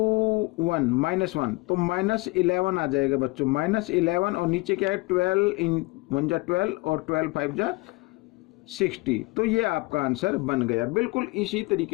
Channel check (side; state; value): right; quieter; 24.2 dB